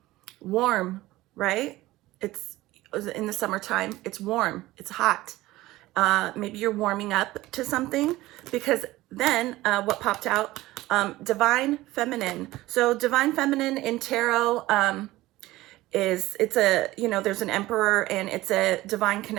Warm, right? It's in the summertime, it's warm, it's hot. Maybe you're warming up to something, because then what popped out, divine feminine. So divine feminine in tarot, there's an emperor, and it's a divine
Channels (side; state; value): left; quieter; 17.6 dB